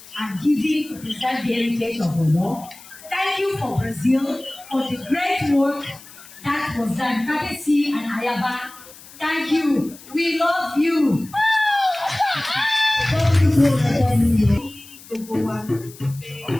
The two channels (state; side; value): noise; left; hiss, 20 dB below the sound